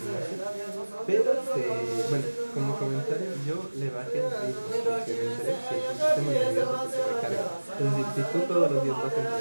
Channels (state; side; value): inverted; both; correlation -1.00